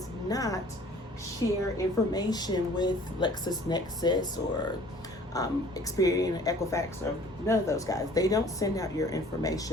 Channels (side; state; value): both; normal; correlation 0.51